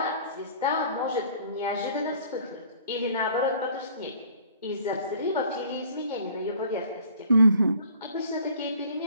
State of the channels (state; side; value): inverted; both; correlation -0.53